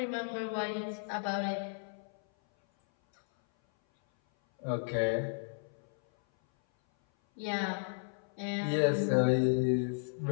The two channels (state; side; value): silent; right; 55 dB below the other